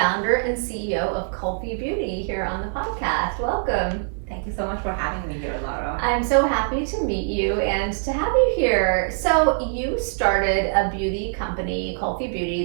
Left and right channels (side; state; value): left; silent; 57 dB below the other